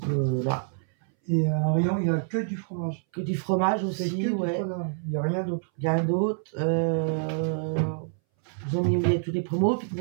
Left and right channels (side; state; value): left; silent; 60 dB below the other